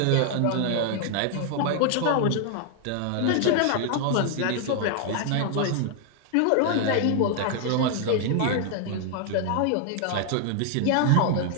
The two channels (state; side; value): different; both; correlation 0.00